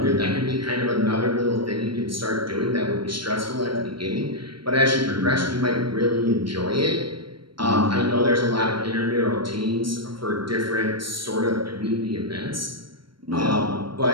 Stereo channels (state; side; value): late; left; 0.73 ms